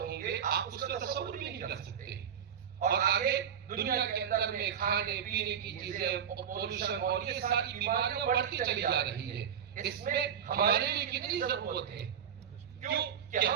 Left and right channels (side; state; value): left; quieter; 8.4 dB